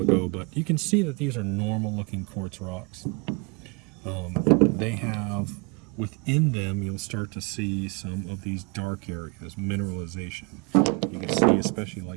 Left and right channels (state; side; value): quieter; left; 31.5 dB